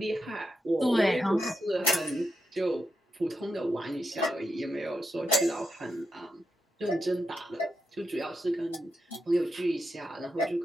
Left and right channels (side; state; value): both; normal; correlation 0.86